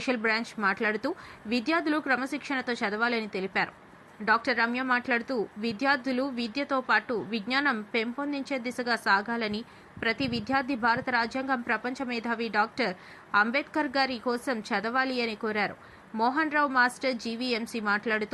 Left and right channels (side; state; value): both; identical; correlation 1.00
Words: బ్రాంచ్ మాట్లాడుతూ విద్యార్థులు క్రమశిక్షణతో చదవాలని తెలిపారు. డాక్టర్ రమ్య మాట్లాడుతూ విద్యార్థులు విద్యతో పాటు విజ్ఞానం పెంపొందించే దిశగా సాగాలని, ప్రతి విద్యార్థి భారత రాజ్యాంగం ప్రపంచ మేధావి డాక్టర్ అంబేద్కర్ గారి కోసం చదవాలి అని కోరారు. మోహన్ రావు మాస్టర్ జీవీఎంసీ